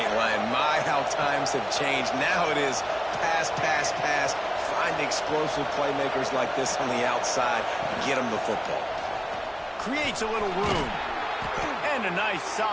lying. My, how times have changed. Now it is pass, pass, pass. Find explosive playmakers like this on the outside. Get them the football. Creates a little room. And a nice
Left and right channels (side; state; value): both; identical; correlation 1.00